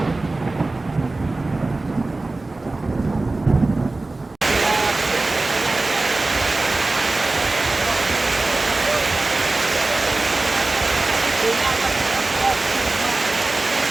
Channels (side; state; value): left; quieter; 3.2 dB